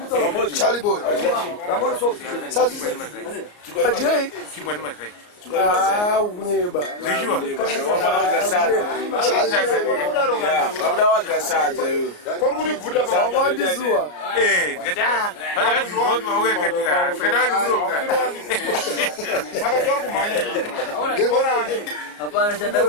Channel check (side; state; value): right; late; 34 ms